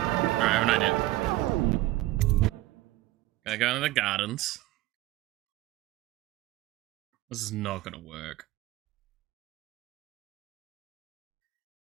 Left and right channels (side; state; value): left; quieter; 16.8 dB